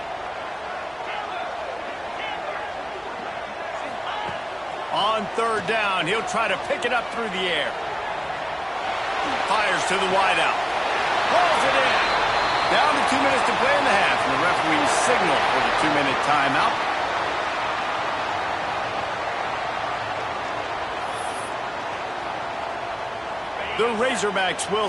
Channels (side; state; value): both; identical; correlation 1.00